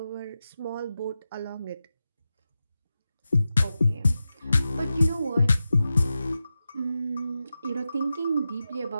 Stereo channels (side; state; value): both; inverted; correlation -0.91